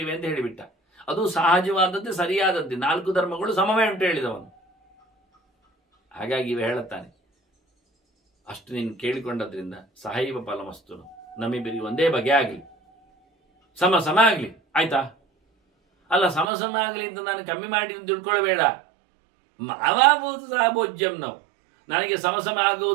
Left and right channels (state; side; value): drops out; left; at 16.5 s